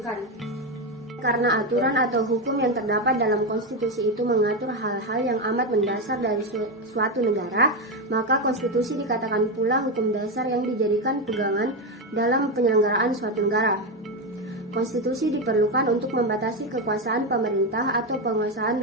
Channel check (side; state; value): both; normal; correlation 0.11